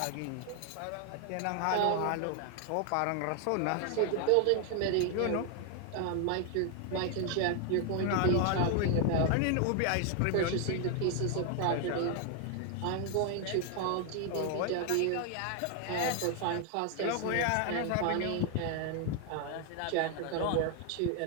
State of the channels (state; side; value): different; both; correlation 0.00